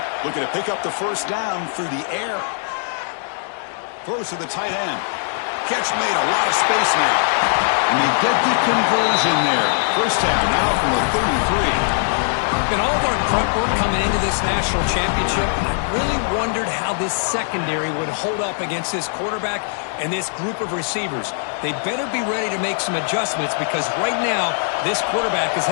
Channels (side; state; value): right; silent; digital silence